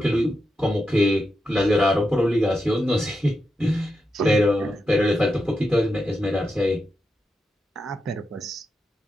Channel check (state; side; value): normal; both; correlation 0.87